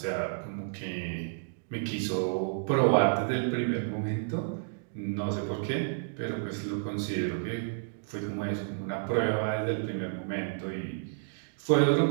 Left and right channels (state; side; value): silent; left; digital silence